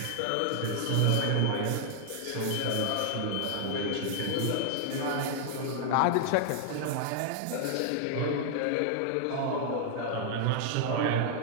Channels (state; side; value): different; both; correlation 0.00